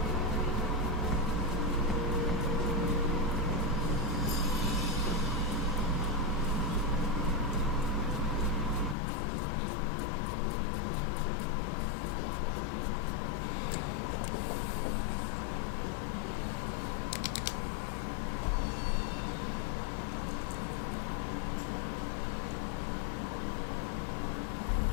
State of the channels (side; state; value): right; drops out; at 9.0 s